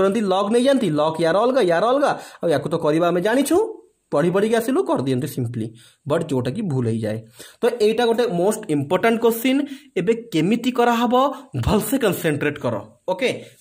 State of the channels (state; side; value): identical; both; correlation 1.00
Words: log नै जानती log यार अलगा आ याकू तो करिबा हमें जानिछु पढ़ी पढ़ी आसिलु कर दियंते सिंपली बट जोटा कि भूल हो जाए। तो एटा गोटे मोस्ट इंपोर्टेंट क्वेश्चन एबे केमिति करा हबो भलसे कंसंट्रेट करो। ओके